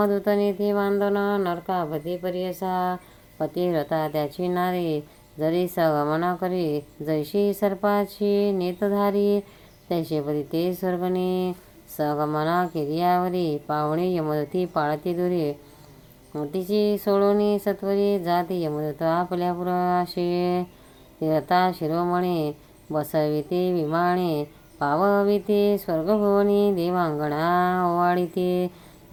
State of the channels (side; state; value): both; identical; correlation 1.00